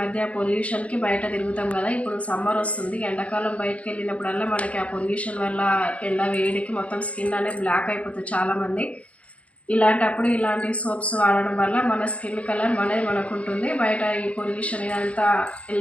పొల్యూషన్కి బయట తిరుగుతాం కదా, ఇప్పుడు సమ్మర్ వస్తుంది. ఎండాకాలం బయటకు వెళ్ళినప్పుడల్లా మనకి ఆ పొల్యూషన్ వల్ల ఎండ వేడికి మొత్తం స్కిన్ అనేది బ్లాక్ అయిపోతుంది చాలామంది. ఇలాంటప్పుడు ఇలాంటి సోప్స్ వాడడం వల్ల మన స్కిన్ కలర్ మనకు ఉంటుంది. బయట ఈ పొల్యూషన్ ఇదంతా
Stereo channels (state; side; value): late; right; 0.064 ms